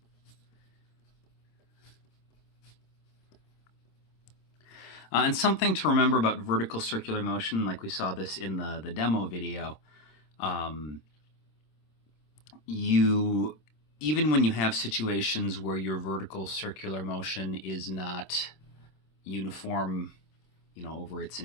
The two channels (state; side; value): late; right; 26 ms